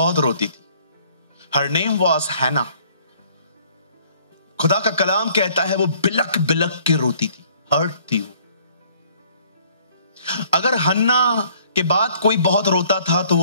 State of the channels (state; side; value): inverted; both; correlation -0.59